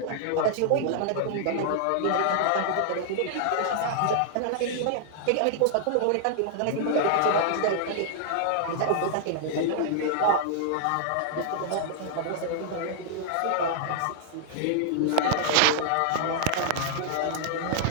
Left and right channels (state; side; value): different; both; correlation -0.01